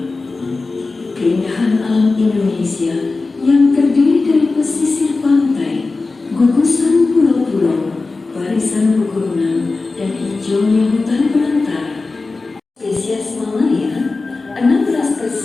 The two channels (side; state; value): right; quieter; 3.7 dB